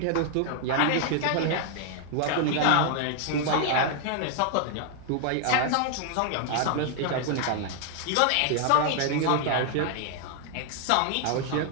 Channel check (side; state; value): both; different; correlation 0.00